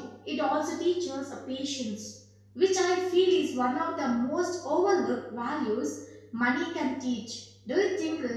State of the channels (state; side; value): identical; both; correlation 1.00